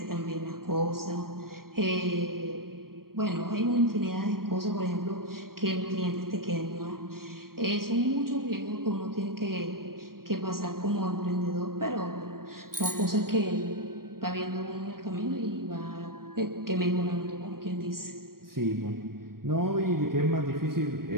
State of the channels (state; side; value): late; left; 0.93 ms